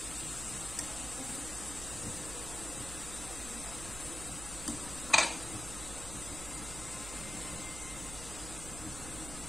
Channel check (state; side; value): noise; right; hum, 9 dB below the sound